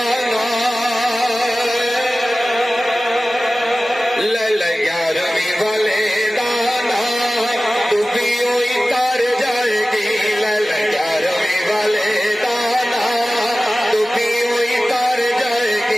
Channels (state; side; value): normal; both; correlation 0.97